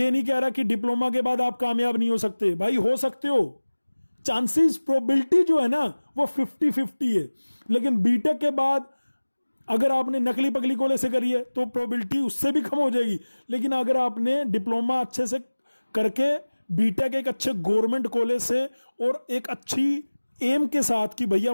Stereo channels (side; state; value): both; inverted; correlation -1.00